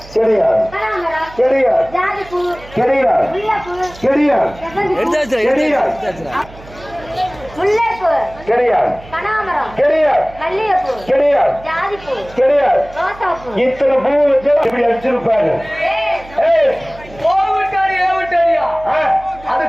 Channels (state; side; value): noise; right; hum, 20 dB below the sound